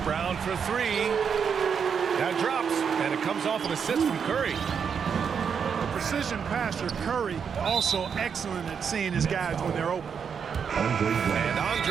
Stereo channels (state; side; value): quieter; left; 6.8 dB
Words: for three. That drops, and it comes off an assist from Curry. The precision passer, Curry, also excellent at seeing his guys when they're open. And